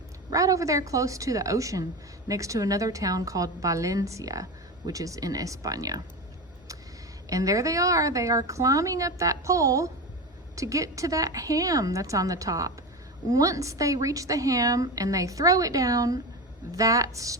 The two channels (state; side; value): normal; both; correlation 0.23